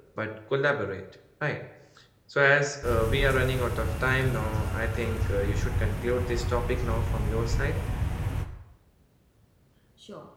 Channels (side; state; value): both; identical; correlation 1.00